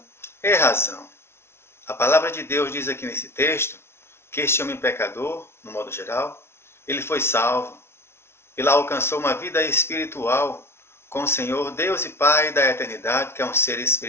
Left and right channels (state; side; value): late; right; 0.12 ms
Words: é razão. A palavra de Deus diz aqui nesse texto que este homem pecador, no modo geral, ele foi salvo. Ele alcançou uma vida espiritual com o Senhor, Deus e Pai da eternidade, que é um ser